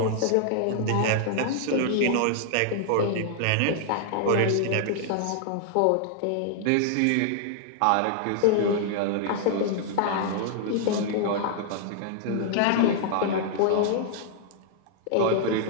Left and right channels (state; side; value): different; both; correlation 0.00